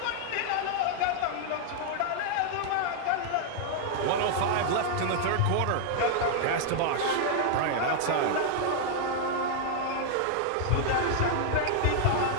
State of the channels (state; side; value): different; both; correlation 0.00